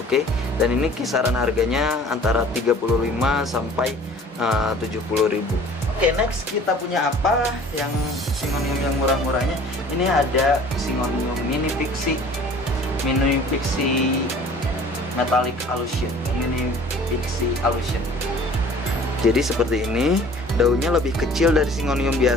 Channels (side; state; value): both; normal; correlation 0.49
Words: Dan ini kisaran harganya antara 35 sampai 70.000. Oke, next kita punya apa yang Syngonium yang murah-murahnya. Ini ada Syngonium Mini Pixie Metallic Illusion. Mini Pixie Illusion. Jadi seperti ini, daunnya lebih kecil dari Syngonium